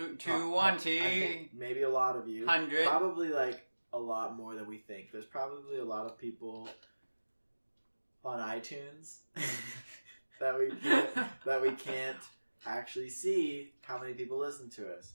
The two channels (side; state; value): both; inverted; correlation -1.00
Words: two. I think maybe a lot of you. 100. Probably like a lot more than we think. There's probably a lot of people on iTunes that we can't actually see how many people listen to us.